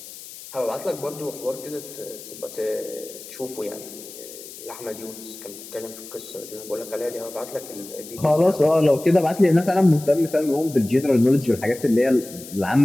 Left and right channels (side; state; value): left; noise; hiss, 15 dB below the sound